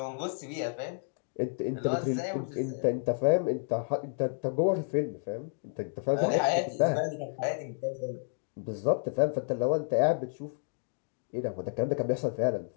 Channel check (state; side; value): silent; right; digital silence